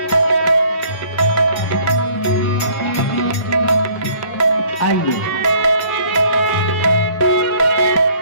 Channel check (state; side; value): late; right; 1.0 ms